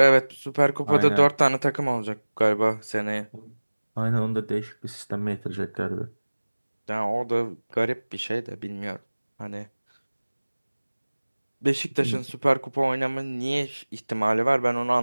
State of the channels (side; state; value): both; inverted; correlation -1.00